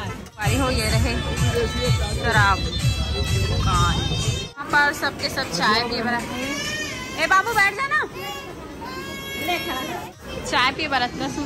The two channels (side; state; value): both; identical; correlation 1.00